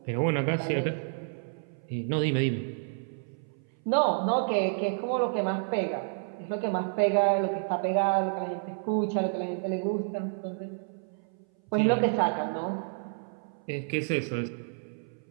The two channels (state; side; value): silent; left; 58 dB below the other